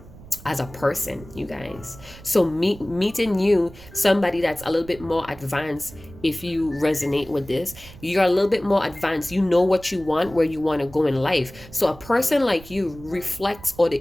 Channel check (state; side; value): noise; right; rumble, 19 dB below the sound